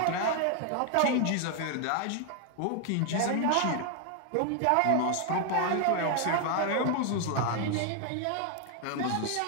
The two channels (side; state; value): both; different; correlation 0.00